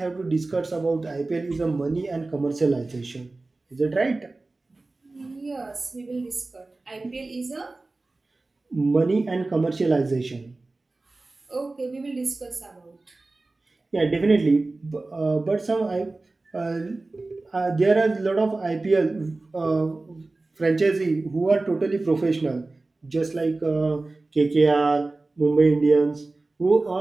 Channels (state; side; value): quieter; left; 3.3 dB